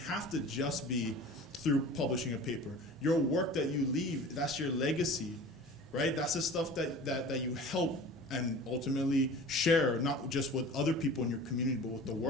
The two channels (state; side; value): normal; both; correlation 0.40